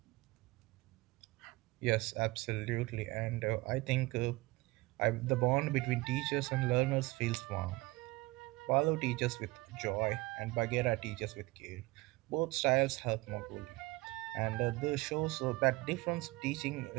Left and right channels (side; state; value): left; quieter; 22.1 dB